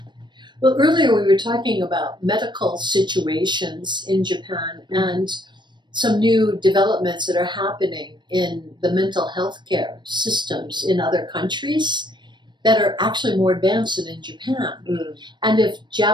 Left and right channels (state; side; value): late; left; 0.22 ms